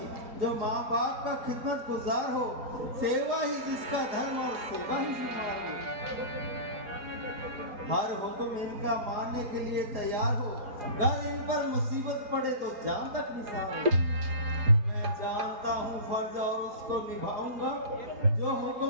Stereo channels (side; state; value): left; late; 4.8 ms